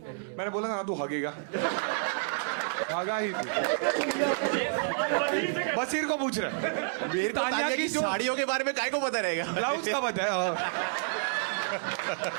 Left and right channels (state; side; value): silent; left; digital silence